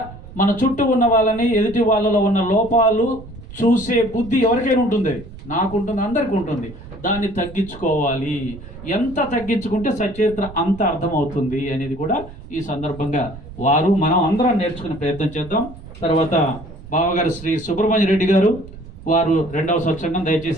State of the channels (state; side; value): noise; right; rumble, 16 dB below the sound